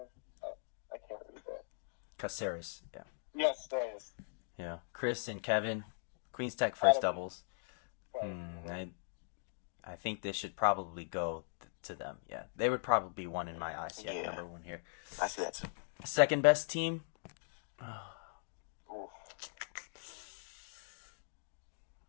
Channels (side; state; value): right; silent; digital silence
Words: I can't read that. Caceres, yeah. Yes, there it is. Yeah. Chris and Kevin. Queens Tech first doubles. I think this should probably go to them. Yeah. They would probably be one in my eyes. Yeah, number one here. I see that too. Second best team.